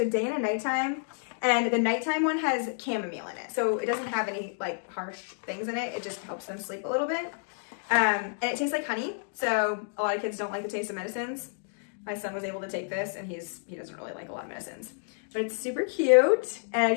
day and a nighttime. And the nighttime one has chamomile in it. So it doesn't have any like harsh things in it. It just helps them sleep a little bit. And it tastes like honey. So a lot of kids don't like the taste of medicines. My son was able to take this, and he doesn't really like a lot of medicines. But it's super cute. And I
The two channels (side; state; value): right; silent; digital silence